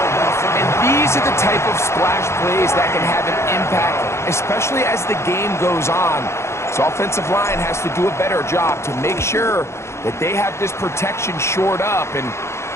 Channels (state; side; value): late; right; 0.13 ms